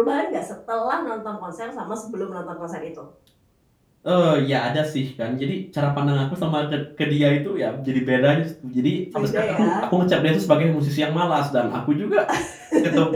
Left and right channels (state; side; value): identical; both; correlation 1.00